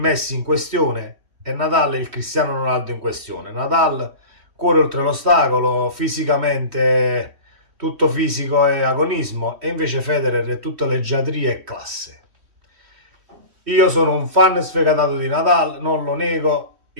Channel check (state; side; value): late; left; 3.1 ms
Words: in questione e Nadal è il Cristiano Ronaldo in questione. Nadal cuore oltre l'ostacolo, fisicamente tutto fisico e agonismo, e invece Federer è tutta leggiadria e classe. Io sono un fan sfegatato di Nadal, non lo nego,